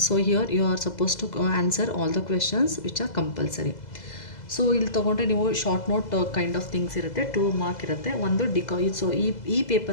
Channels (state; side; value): late; right; 2.0 ms